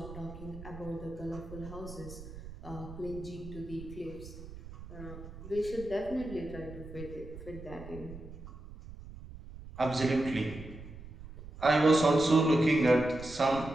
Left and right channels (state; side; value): noise; right; rumble, 14 dB below the sound